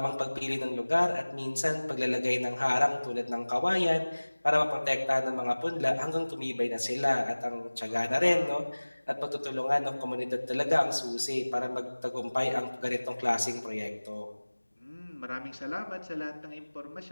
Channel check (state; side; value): inverted; both; correlation -1.00